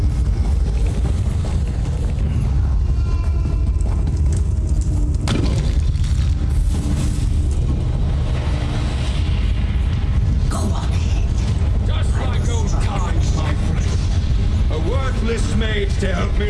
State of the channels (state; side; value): identical; both; correlation 1.00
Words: To help me